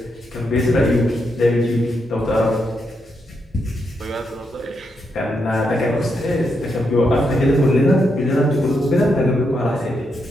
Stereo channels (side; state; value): both; normal; correlation 0.82